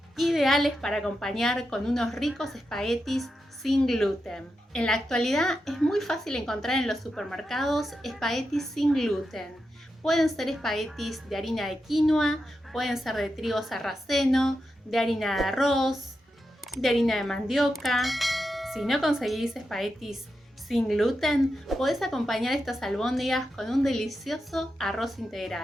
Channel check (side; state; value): both; normal; correlation 0.88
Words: ideales para acompañar con unos ricos espaguetis sin gluten. En la actualidad es muy fácil encontrar en los supermercados espaguetis sin gluten. Pueden ser espaguetis de harina de quinoa, pueden ser de trigo sarraceno, de harina de arroz, de harina de mandioca. Si no conseguís espaguetis sin gluten, podés acompañar estas albóndigas con un delicioso arroz